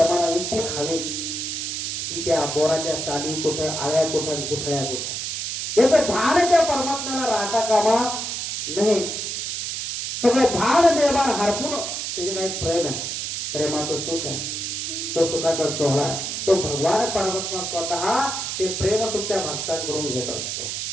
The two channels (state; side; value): noise; right; hiss, 3 dB below the sound